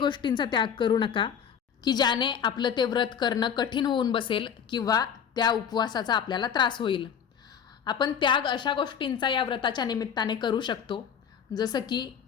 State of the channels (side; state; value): right; quieter; 7.8 dB